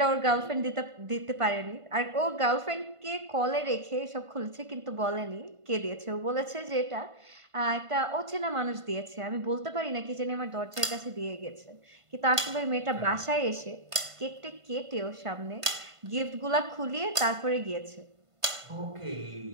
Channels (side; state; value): left; late; 1.5 ms